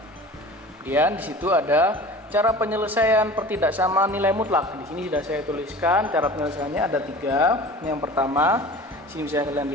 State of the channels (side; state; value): both; normal; correlation 0.40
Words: Kemudian di situ ada cara penyelesaian pertidaksamaan nilai mutlak. Di sini sudah saya tuliskan cara penyelesaiannya ada 3. Yang pertama, sini bisa kalian